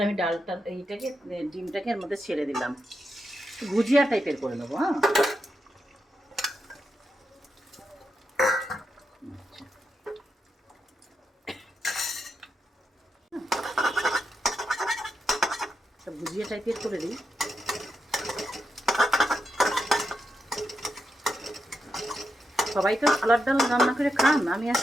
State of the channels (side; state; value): both; normal; correlation 0.85